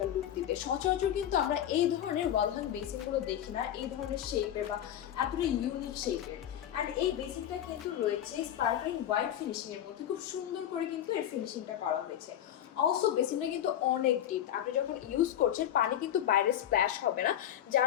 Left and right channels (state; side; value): quieter; right; 10.9 dB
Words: লুক দিবে। সচরাচর কিন্তু আমরা এই ধরনের ওয়াল হ্যাং বেসিনগুলো দেখি না, এই ধরনের শেপের বা এতটা ইউনিক শেপের। আর এই বেসিনটা কিন্তু রয়েছে স্পার্কলিং হোয়াইট ফিনিশিং এর মধ্যে, খুব সুন্দর করে কিন্তু এর ফিনিশিংটা করা হয়েছে। অলসো বেসিনটা কিন্তু অনেক ডিপ, আপনি যখন ইউজ করছেন পানি কিন্তু বাইরে স্প্ল্যাশ হবে না,